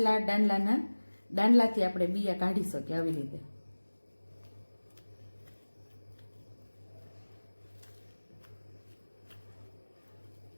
દાંડલાથી આપણે બિયા કાઢી શકીએ આવી રીતે.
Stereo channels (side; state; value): both; inverted; correlation -1.00